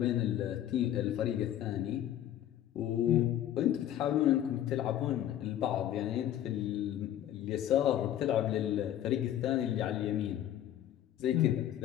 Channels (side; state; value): right; quieter; 11.7 dB